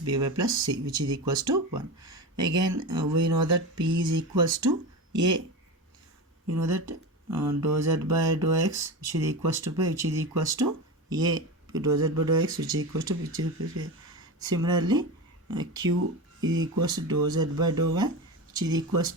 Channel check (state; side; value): normal; both; correlation 0.24